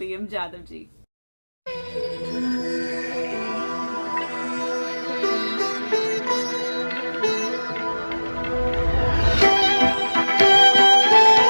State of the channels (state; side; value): inverted; both; correlation -1.00